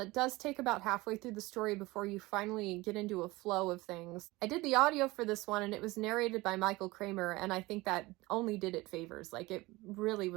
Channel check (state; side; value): quieter; left; 21.1 dB